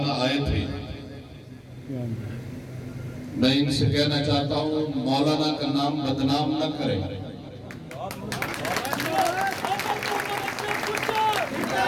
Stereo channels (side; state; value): both; identical; correlation 1.00